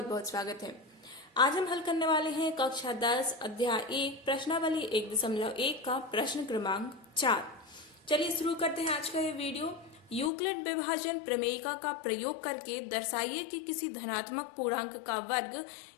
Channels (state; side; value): drops out; right; at 10.3 s